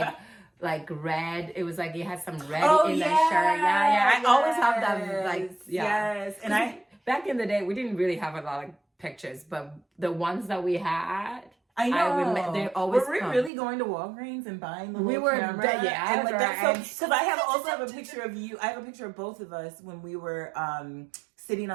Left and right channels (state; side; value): drops out; left; at 13.5 s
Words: like red. It was like you had some red in that shirt. Yeah. I always have that Yes. And back in the day we didn't really have a lot of pictures, but the ones that we had. I know. They always were we really going to Walgreens and buying the little camera? Yeah. And like that's so because I also have a picture of you. I have a picture of both of us when we were sitting